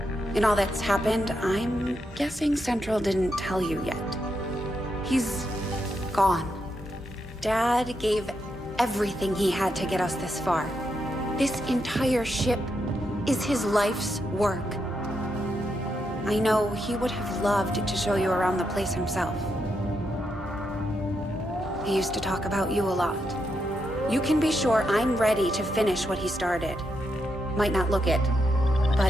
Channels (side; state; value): both; normal; correlation 0.82